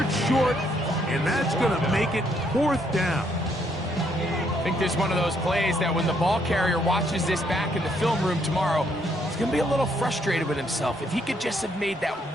short, and that's going to make it 4th down. I think this is one of those plays that when the ball carrier watches this back in the film room tomorrow, he's going to be a little frustrated with himself. If he could just have made that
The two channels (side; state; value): both; normal; correlation 0.71